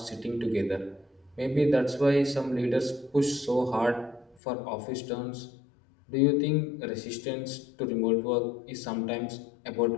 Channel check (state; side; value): drops out; right; at 4.4 s